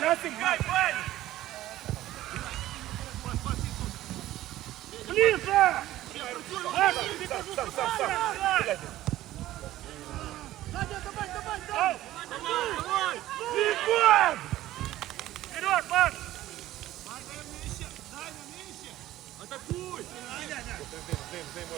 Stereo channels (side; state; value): left; quieter; 14.8 dB